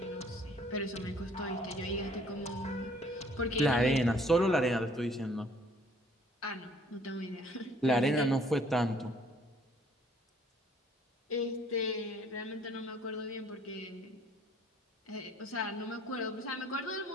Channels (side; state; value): both; normal; correlation 0.59